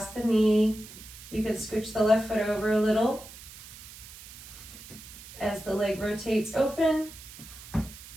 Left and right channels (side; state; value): right; noise; hiss, 16 dB below the sound